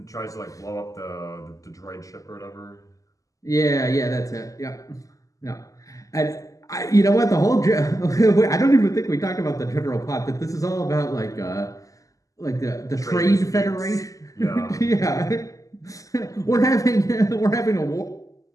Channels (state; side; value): late; right; 0.16 ms